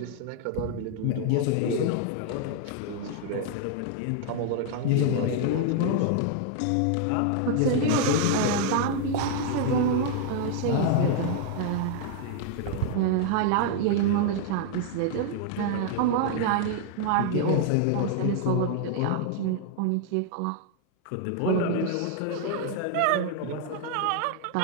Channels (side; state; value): both; different; correlation 0.00